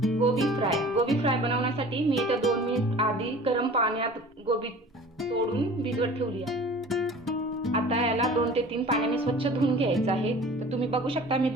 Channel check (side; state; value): both; normal; correlation 0.44